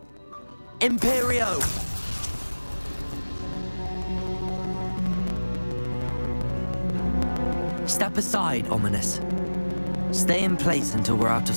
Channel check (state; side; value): inverted; both; correlation -1.00